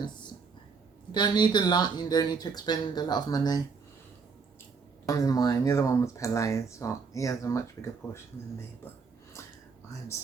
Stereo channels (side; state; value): left; quieter; 5.2 dB